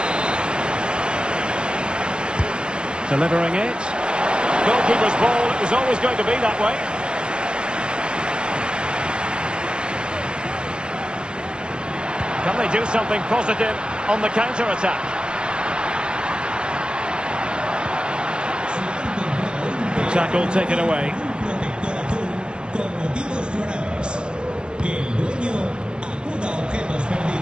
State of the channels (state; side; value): late; left; 0.050 ms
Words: Delivering it. Goalkeeper's ball. It was always going to be that way. Can they do something positive on the counter-attack? Tackle taken away.